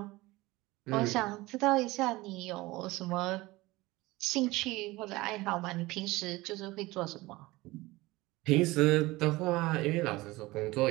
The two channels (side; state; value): left; quieter; 20.3 dB